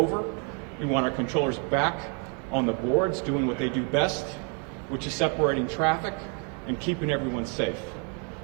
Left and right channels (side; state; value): left; quieter; 38.4 dB